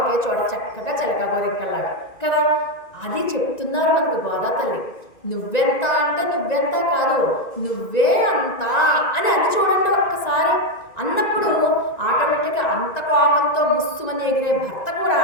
చోట చక్కగా చిలక గోరింకల్లాగా కదా. అది చెప్తున్నారు మనకు గోదా తల్లి. నువ్వెంత అంటే నువ్వెంత కాదు, నువ్వే అంత అని అది చూడండి ఒక్కసారి. అన్నప్పుడు ఆటోమేటిక్గా అంత కోపంతో బుస్సుమని ఎగిరే భర్త కూడా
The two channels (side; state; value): right; late; 1.9 ms